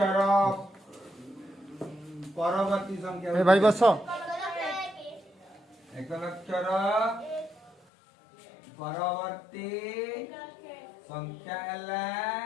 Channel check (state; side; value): drops out; right; at 7.8 s